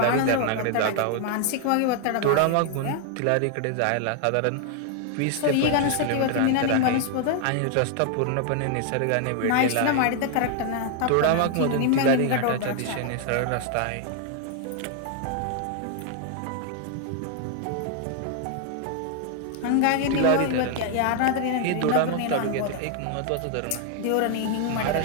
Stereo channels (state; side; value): different; both; correlation 0.00